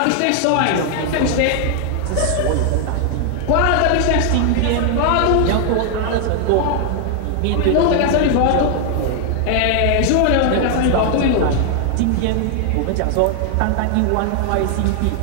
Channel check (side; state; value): both; different; correlation 0.00